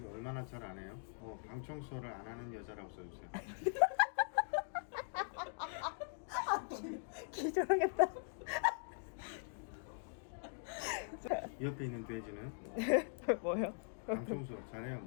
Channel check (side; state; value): right; silent; digital silence